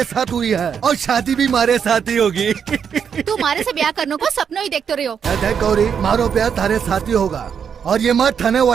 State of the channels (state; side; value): quieter; left; 7.3 dB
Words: साथ हुई है और शादी भी मारे साथ ही होगी। तू मारे से ब्याह करने को सपनों ही देखते रही हो। गौरी, मारो ब्याह थारे साथ ही होगा और ये मत थाने